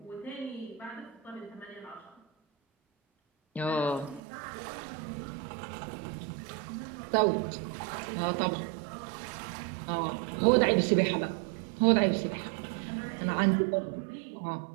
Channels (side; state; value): left; drops out; at 4.2 s